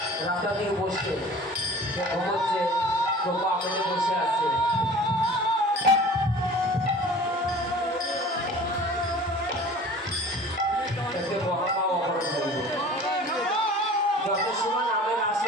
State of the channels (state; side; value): normal; both; correlation 0.43